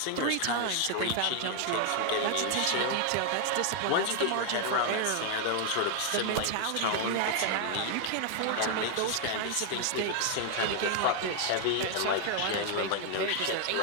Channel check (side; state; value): both; different; correlation 0.00